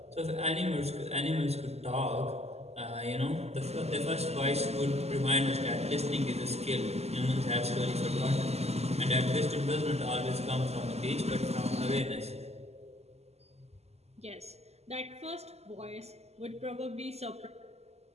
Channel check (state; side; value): late; left; 0.30 ms